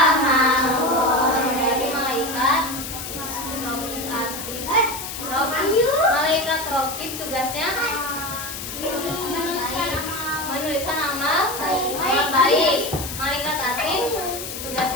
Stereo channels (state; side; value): noise; left; hiss, 8 dB below the sound